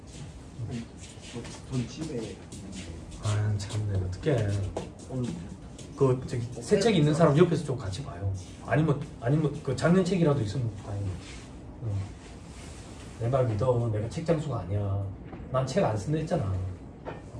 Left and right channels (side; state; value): both; identical; correlation 1.00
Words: 돈 집에. 참네, 어떡해. 새 책 있는 사람 옆에서 좀 같이 봐요. 아니면 그 작년 책이라도 있으면 다행이야. 내 말 믿어. 내가 책 장수가 아니야. 난 책 안 쓴다 했잖아.